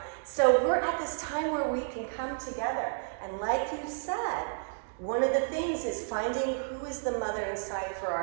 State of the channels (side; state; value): left; silent; digital silence